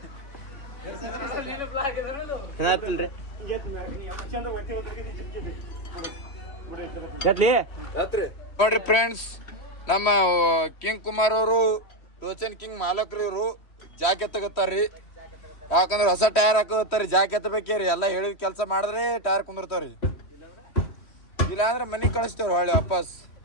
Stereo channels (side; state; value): right; late; 3.2 ms